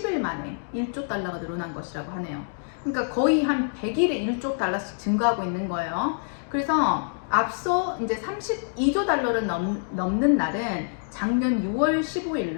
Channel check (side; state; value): right; silent; digital silence